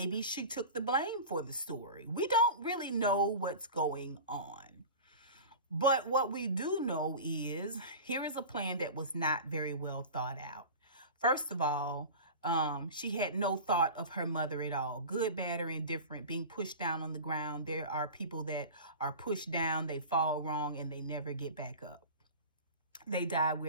she took the blame for the story. We don't really know what's going on. But what we do know is here is a plan that was not very well thought out. First of all, she had no thought of her mother at all. Good, bad, or indifferent, being pushed down on the ground. There are people that are pushed down, they fall wrong, and they never get back up. They die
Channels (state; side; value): inverted; both; correlation -0.33